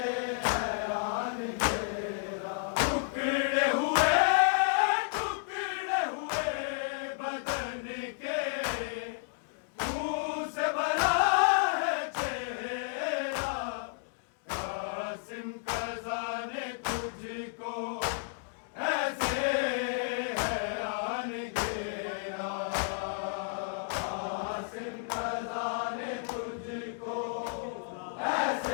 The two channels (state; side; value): silent; right; digital silence